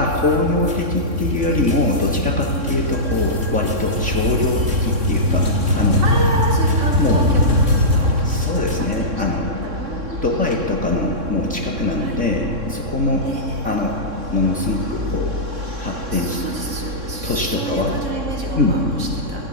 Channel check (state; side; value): late; left; 3.6 ms